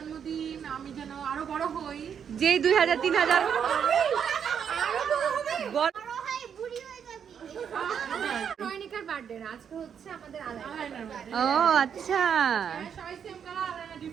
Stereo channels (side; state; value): left; quieter; 7.8 dB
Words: আমি যেন আরো বড় হই। যেই 2000 3000 রয়নিকার বার্থডে না, আজকে হচ্ছে আমাদের আলাদা। ও আচ্ছা, সবাই সেম কালার, আলাদা